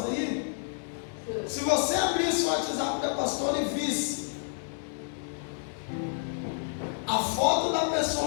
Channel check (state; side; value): silent; right; digital silence